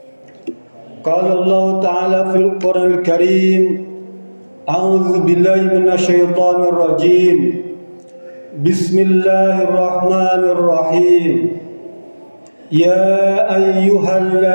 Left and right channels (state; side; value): inverted; both; correlation -1.00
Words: Qala Allah Ta'ala fil Qur'an al-Karim, a'udzu billahi minasy syaithanir rajim. Bismillahirrahmanirrahim. Ya